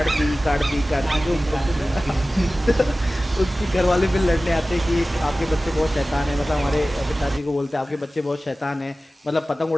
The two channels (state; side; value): normal; both; correlation 0.96